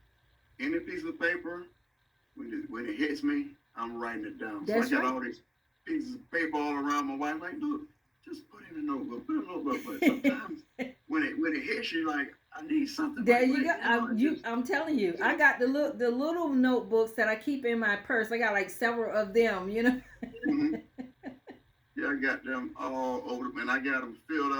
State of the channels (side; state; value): both; identical; correlation 1.00